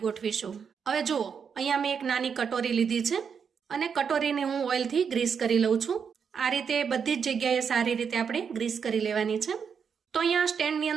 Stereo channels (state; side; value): quieter; left; 6.7 dB